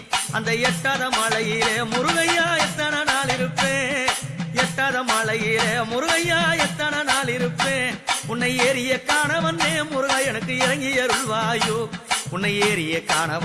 அந்த எட்டாத மலையிலே முருகையா எத்தனை நாள் இருப்பேன் எட்டாத மலையிலே முருகையா எத்தனை நாள் இருப்பேன் உன்னை ஏறிய காண வந்தேன் முருகா எனக்கு இறங்கி அருள்வாயோ உன்னை ஏறிய காண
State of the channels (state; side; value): identical; both; correlation 1.00